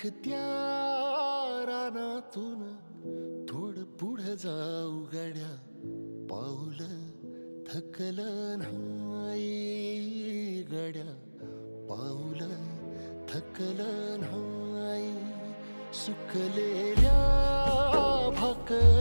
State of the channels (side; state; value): both; inverted; correlation -1.00